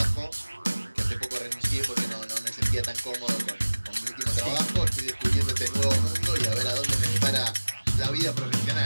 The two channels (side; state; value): both; inverted; correlation -1.00